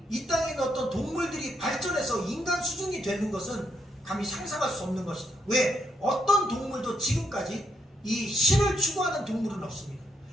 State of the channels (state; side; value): normal; both; correlation 0.78